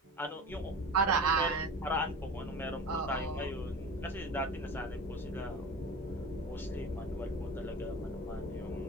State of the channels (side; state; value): both; normal; correlation 0.33